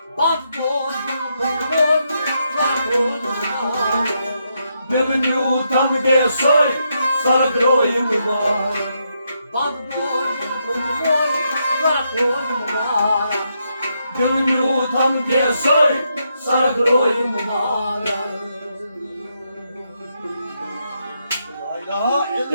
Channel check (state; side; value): inverted; both; correlation -0.80